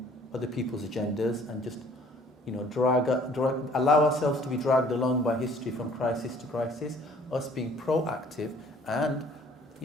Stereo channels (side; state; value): both; normal; correlation 0.55